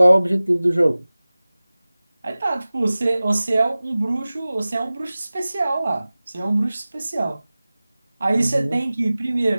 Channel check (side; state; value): both; inverted; correlation -0.98